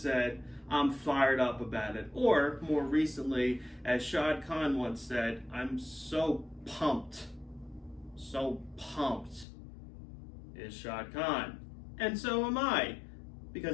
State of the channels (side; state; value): right; drops out; at 9.5 s